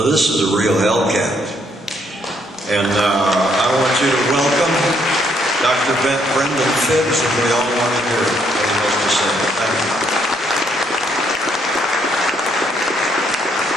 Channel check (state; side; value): normal; both; correlation 0.71